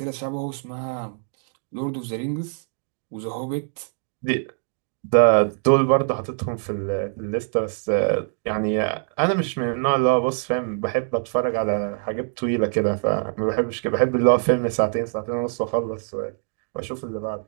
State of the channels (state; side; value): silent; left; digital silence